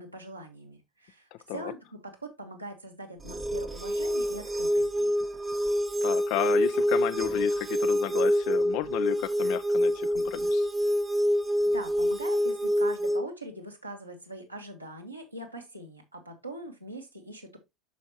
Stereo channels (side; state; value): both; normal; correlation 0.86